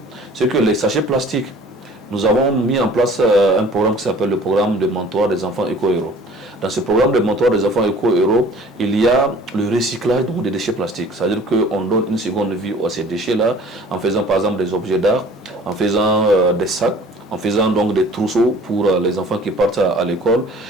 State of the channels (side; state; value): both; normal; correlation 0.49